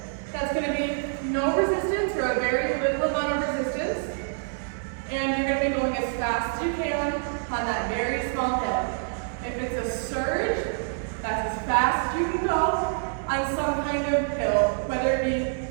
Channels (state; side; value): silent; left; digital silence